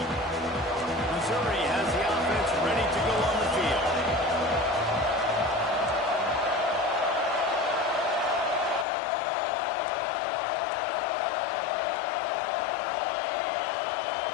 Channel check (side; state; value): right; drops out; at 8.8 s